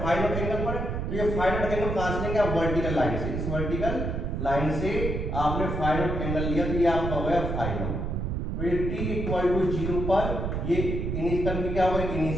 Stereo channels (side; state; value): right; noise; rumble, 2 dB below the sound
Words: फाई नॉट एंगल पर है। तो ये फाई नॉट एंगल कहां से लेंगे आप, वर्टिकल लाइन से। इस वर्टिकल लाइन से आपने फाई नॉट एंगल लिया तो ये आपका हो गया फाई नॉट। तो ये t इक्वल टू 0 पर ये इनिशियल की क्या होगा,